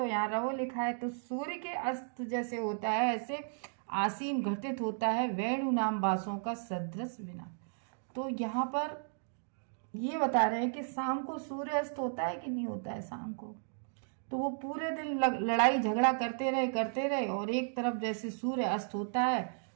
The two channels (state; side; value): silent; left; digital silence